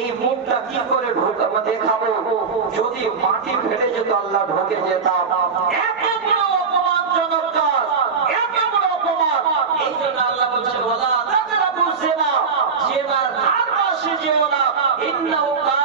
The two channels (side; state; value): left; quieter; 5.5 dB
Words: এই মুখটা কি করে দেখাবো। যদি মাটি ফেলে যেত আল্লাহ ঢোকে যেতাম। এত বড় অপমানজনক কাজ, এত বড় অপমান। এই জন্য আল্লাহ বলছেন, ওয়ালা তাকরাবু জিনা, জিনার ধার পাশে যেও না, ইন্নাহু